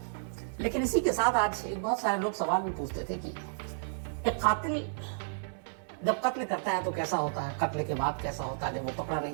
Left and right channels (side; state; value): left; silent; digital silence